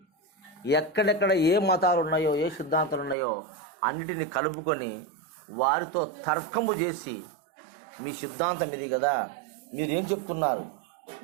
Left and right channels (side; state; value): left; drops out; at 3.2 s